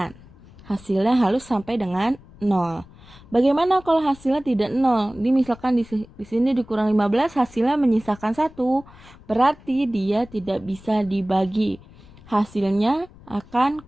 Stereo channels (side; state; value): left; noise; rumble, 22 dB below the sound